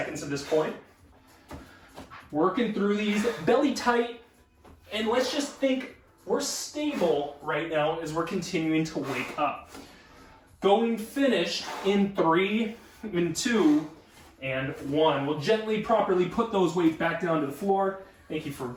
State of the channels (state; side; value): identical; both; correlation 1.00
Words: at this point. Working through these, belly tight. And let's just think we're stable right now as we're continuing to wake up. Going finished in 3, in 2, and 1. We'll gently, properly put those weights back down to the floor. Thank you for